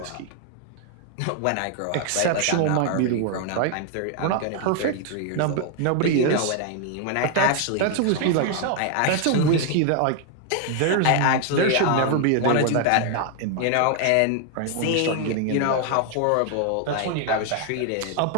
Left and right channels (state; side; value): different; both; correlation 0.00